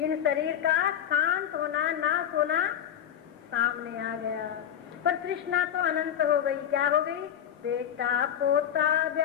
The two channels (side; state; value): right; quieter; 9.7 dB